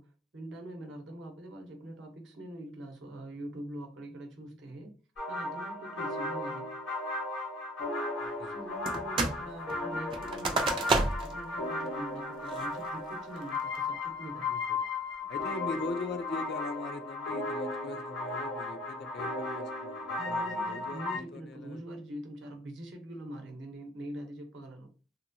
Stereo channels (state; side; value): normal; both; correlation 0.49